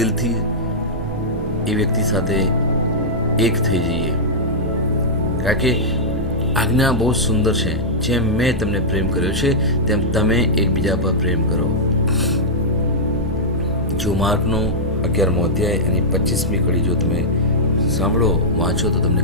એ વ્યક્તિ સાથે એક થઈ જઈએ. કારણ કે આજ્ઞા બહુ સુંદર છે, જેમ મેં તમને પ્રેમ કર્યો છે તેમ તમે એકબીજા પર પ્રેમ કરો. જો માર્કનો 11મો અધ્યાય એની 25મી કડી જો તમે સાંભળો, વાંચો તો તમને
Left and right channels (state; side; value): normal; both; correlation -0.09